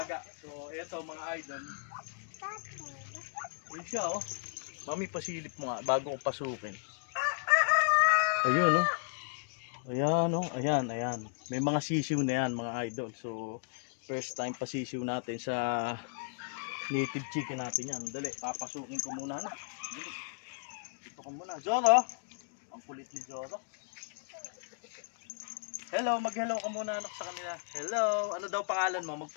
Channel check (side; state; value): right; silent; digital silence